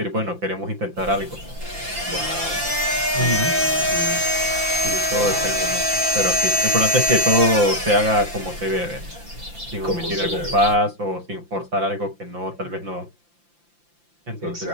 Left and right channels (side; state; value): left; late; 5.8 ms